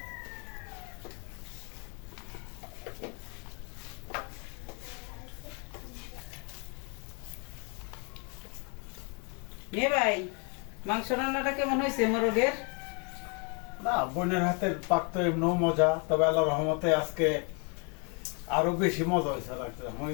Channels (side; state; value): right; quieter; 35.8 dB